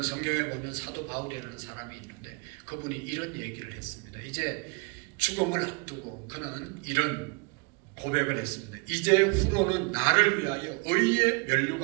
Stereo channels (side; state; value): left; quieter; 31.1 dB